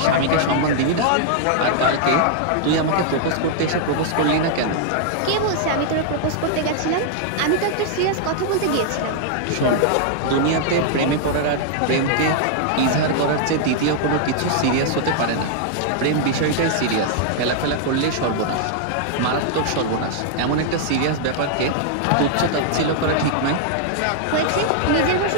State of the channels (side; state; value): both; different; correlation -0.01